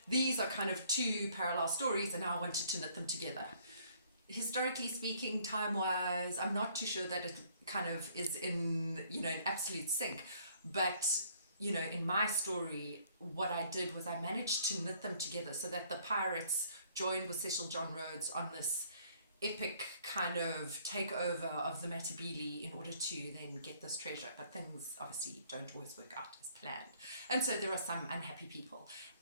these are kind of two parallel stories, and now I wanted to knit them together. Historically speaking, time-wise, I'm not too sure that it kind of is in absolute sync. But, in my story, what I did was I managed to knit them together so that the pirates joined with Cecil John Rhodes on this epic kind of takeover of the Matabele in order to then get this treasure. But things obviously don't always work out as planned. And so there are some unhappy people.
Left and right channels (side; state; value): both; inverted; correlation -0.62